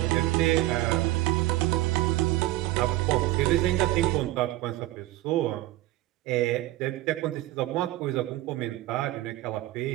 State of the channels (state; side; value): quieter; left; 16.6 dB